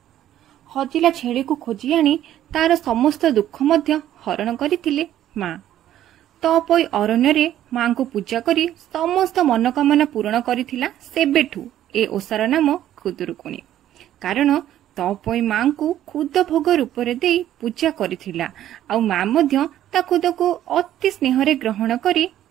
हजिला छेड़ी को खोजी आनी तार समस्त दुख मध्य हरण करथिले मां। तपोई अरण्य रे मां को पूजा करी समस्त मनोकामना पूर्ण करिथिला। सेबेठू ए ओसार नाम खुदुरुकुणी। कारण तपोई मां को खुद भोग रूप रे देई पूजा करिथिला। आ मां मध्य ता खुद को अति स्नेह रे ग्रहण करी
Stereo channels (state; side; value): quieter; left; 12.1 dB